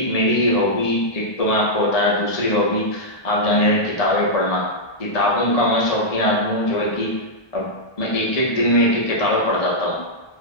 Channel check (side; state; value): right; late; 1.2 ms